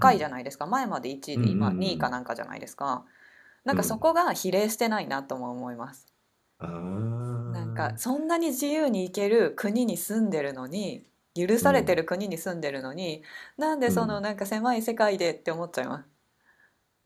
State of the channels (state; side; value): identical; both; correlation 1.00